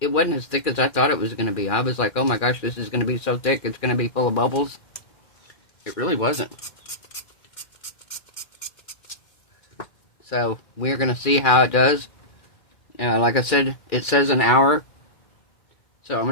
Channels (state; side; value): late; right; 2.4 ms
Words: it wasn't as thick as I thought it was going to be. I was like, oh my gosh, this is going to be so thick, it's going to be full of bubbles. It really wasn't. So, we're going to see how it does. Like I said, it says an hour. So I'm going